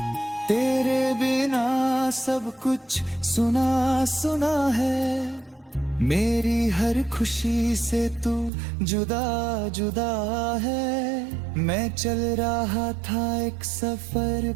तेरे बिना सब कुछ सुना सुना है, मेरी हर खुशी से तू जुदा जुदा है। मैं चल रहा था एक सफर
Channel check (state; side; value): drops out; left; at 8.5 s